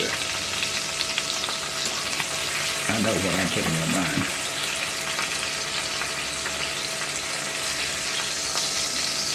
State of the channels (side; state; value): both; identical; correlation 1.00